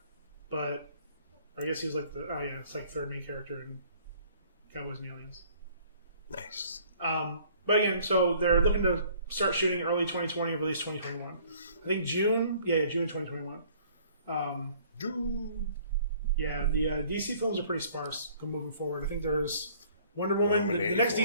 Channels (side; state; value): both; inverted; correlation -0.57